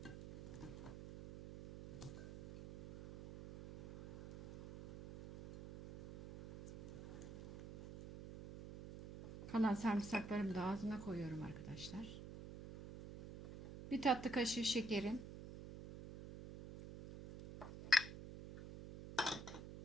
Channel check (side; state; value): right; noise; hum, 11 dB below the sound